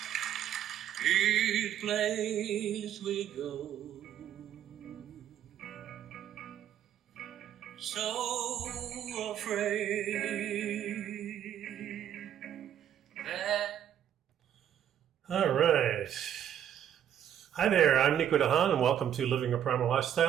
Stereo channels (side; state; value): left; quieter; 10.1 dB